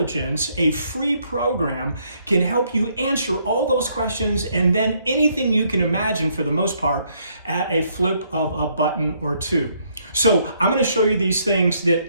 a free program, can help you answer all those questions and then anything you can imagine for the most part at a flip of a button or two. So I'm going to show you these things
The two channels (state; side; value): inverted; both; correlation -0.70